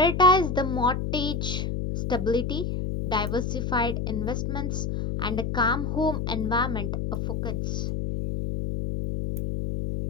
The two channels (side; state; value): left; noise; hum, 2 dB below the sound